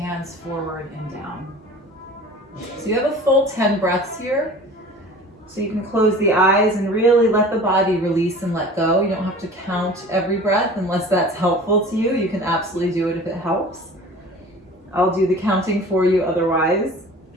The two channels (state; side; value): normal; both; correlation 0.42